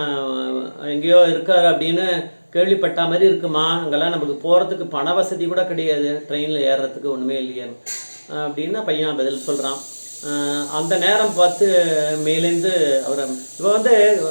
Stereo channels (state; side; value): inverted; both; correlation -1.00